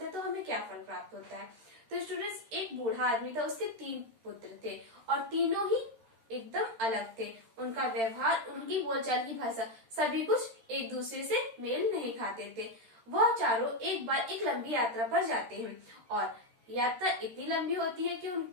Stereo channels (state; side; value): late; left; 13 ms